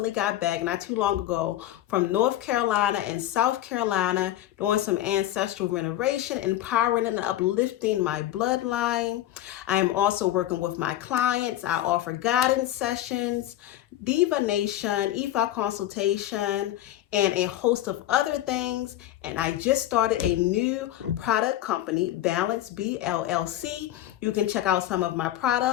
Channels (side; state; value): right; quieter; 13.5 dB